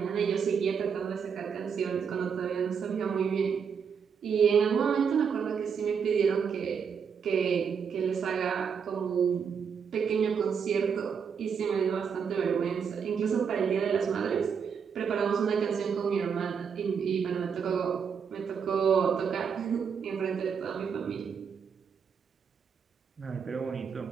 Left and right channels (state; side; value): quieter; left; 6.7 dB